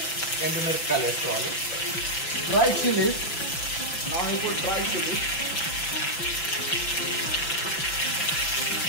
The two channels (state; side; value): late; right; 5.9 ms